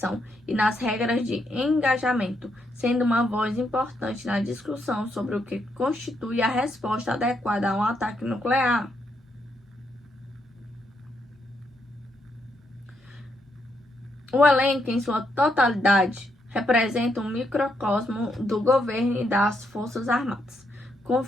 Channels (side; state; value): both; normal; correlation 0.78